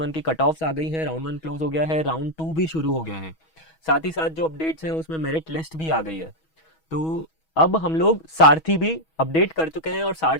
वन की कट ऑफ्स आ गई है। राउंड वन क्लोज हो गया है, राउंड टू भी शुरू हो गया है। साथ ही साथ जो अपडेट्स हैं उसमें मेरिट लिस्ट भी आ गई है। तो अब हम लोग सारथी भी अपडेट कर चुके हैं और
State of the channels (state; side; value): late; right; 6.2 ms